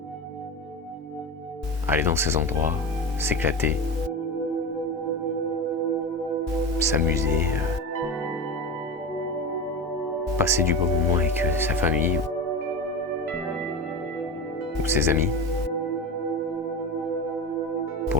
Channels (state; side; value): normal; both; correlation 0.25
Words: aller dans ces endroits, s'éclater, s'amuser, passer du bon moment avec sa famille ou ses amis.